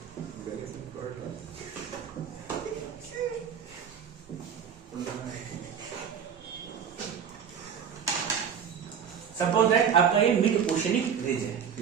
सपोज दैट आपका ये मिड ओशनिक रिज है,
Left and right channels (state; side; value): quieter; left; 7.5 dB